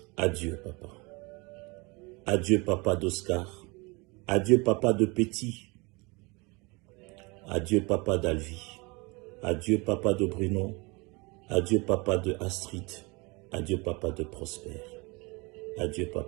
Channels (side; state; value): left; quieter; 27.2 dB